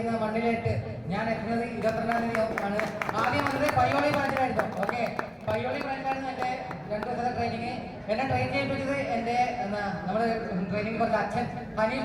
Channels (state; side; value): identical; both; correlation 1.00